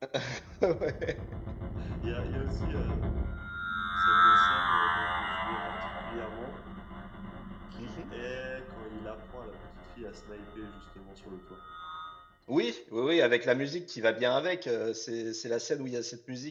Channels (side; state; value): both; identical; correlation 1.00